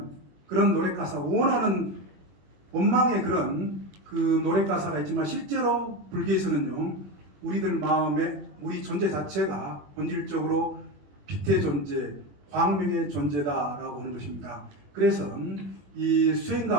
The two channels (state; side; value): late; left; 21 ms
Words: 그런 노래 가사, 원하는 원망의 그런 그 노래 가사가 있지만, 실제로 불교에서는요, 우리들 마음에 우리 존재 자체가 본질적으로 빛의 존재, 광명의 존재다라고 하는 것입니다. 그래서 이